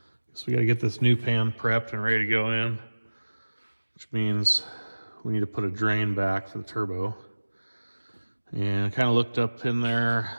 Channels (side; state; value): both; inverted; correlation -1.00